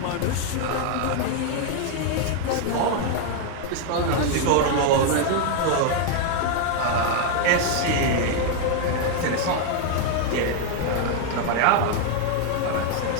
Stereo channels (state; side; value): different; both; correlation 0.00